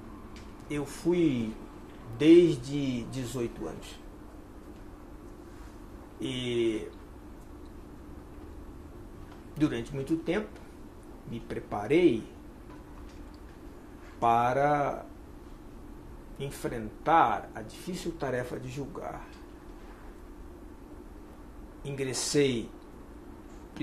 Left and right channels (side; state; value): both; identical; correlation 1.00